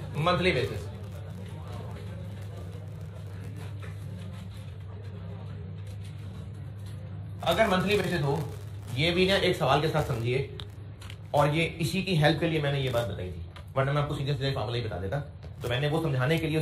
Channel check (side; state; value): both; identical; correlation 1.00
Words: monthly basis. अगर मंथली बेसिस हो, ये भी ना एक सवाल के साथ समझिए, और ये इसी की हेल्प के लिए मैंने ये बात बताई थी, वरना मैं आपको सीधे सीधे फार्मूला ही बता देता। तो मैंने वो समझाने के लिए,